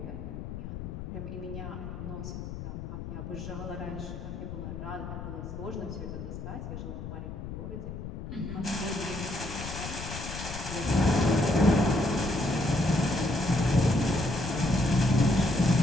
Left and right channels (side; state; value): left; noise; rumble, 8 dB below the sound